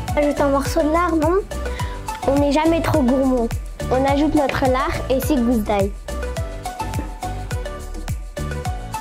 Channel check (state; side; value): identical; both; correlation 1.00